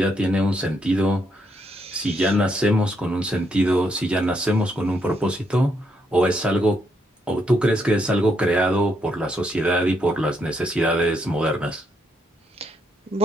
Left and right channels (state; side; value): normal; both; correlation 0.76